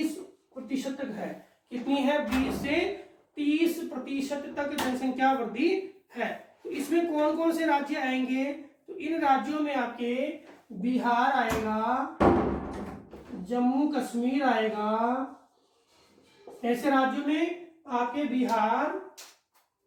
तक है। कितनी है? 20 से 30% तक जनसंख्या वृद्धि है। तो इसमें कौन कौन से राज्य आएंगे? तो इन राज्यों में आपके बिहार आएगा, जम्मू कश्मीर आएगा। ऐसे राज्यों में आपके बिहार,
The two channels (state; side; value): identical; both; correlation 1.00